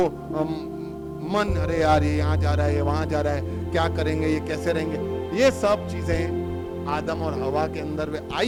मन, अरे यार ये यहाँ जा रहा है, ये वहां जा रहा है, क्या करेंगे, ये कैसे रहेंगे। ये सब चीजें आदम और हवा के अंदर वे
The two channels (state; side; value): identical; both; correlation 1.00